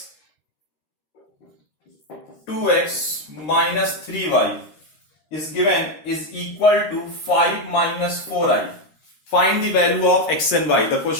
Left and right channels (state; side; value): late; right; 13 ms